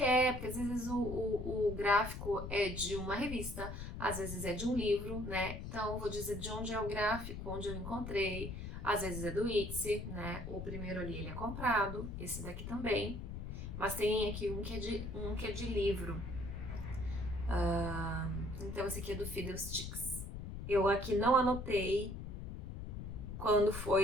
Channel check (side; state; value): left; noise; rumble, 7 dB below the sound